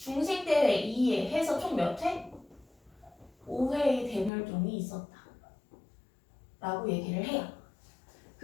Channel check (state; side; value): drops out; right; at 4.3 s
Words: 2회 해서 총 몇 회? 5회의 대멸종이 있었다 라고 얘기를 해요.